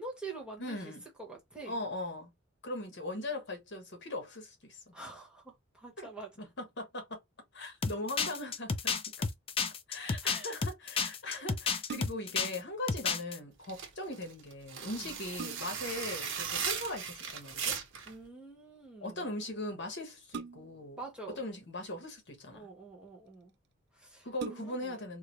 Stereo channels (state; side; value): normal; both; correlation 0.09